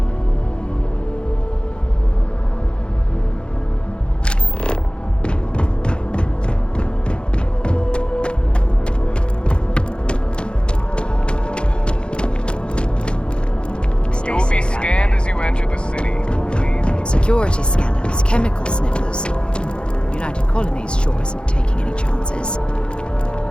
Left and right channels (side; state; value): right; late; 0.053 ms